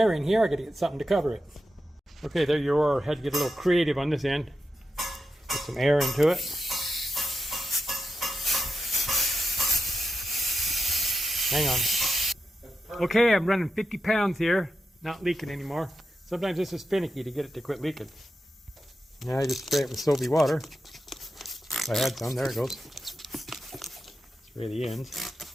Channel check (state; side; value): normal; both; correlation 0.88